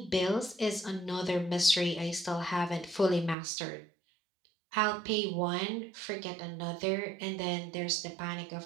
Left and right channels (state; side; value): drops out; left; at 3.4 s